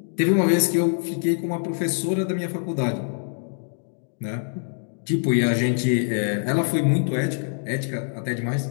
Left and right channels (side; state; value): right; silent; 62 dB below the other